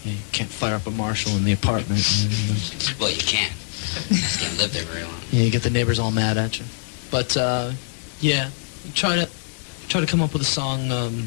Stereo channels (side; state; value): right; silent; 63 dB below the other